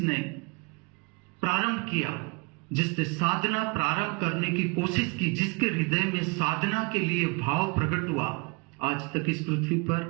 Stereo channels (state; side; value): quieter; left; 30.3 dB